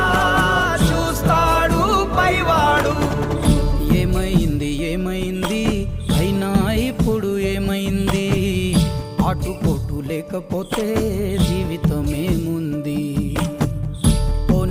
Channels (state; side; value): identical; both; correlation 1.00